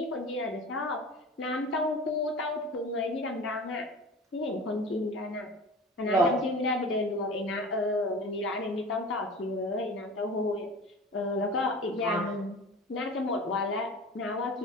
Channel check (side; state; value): both; normal; correlation 0.37